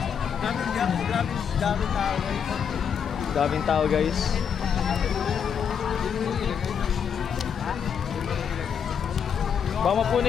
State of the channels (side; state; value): right; quieter; 7.5 dB